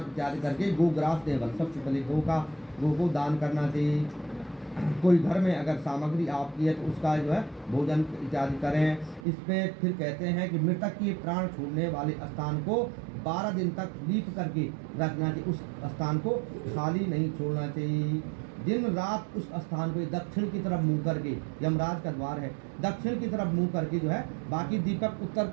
इत्यादि करके गोग्रास देवल सबसे पहले गो को दान करना चाहिए। कोई घर में अगर सामग्री आपकी है तो उसका जो है भोजन इत्यादि करें। इसमें फिर कहते हैं कि मृतक के प्राण छोड़ने वाले स्थान को 12 दिन तक लीप करके रखना चाहिए। उस स्थान को खाली नहीं छोड़ना चाहिए। दिन रात उस स्थान को दक्षिण की तरफ मुंह करके, यमराज का द्वार है, दक्षिण की तरफ मुंह करके जो है बाकी दीपक उत्तर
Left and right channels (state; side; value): drops out; left; at 9.2 s